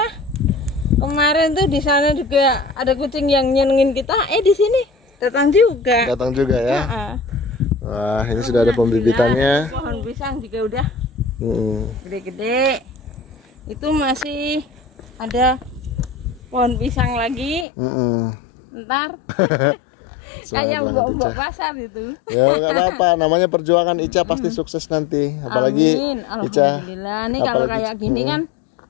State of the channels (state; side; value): drops out; right; at 17.7 s